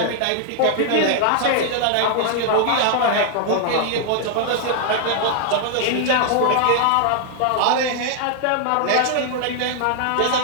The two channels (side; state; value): both; different; correlation 0.00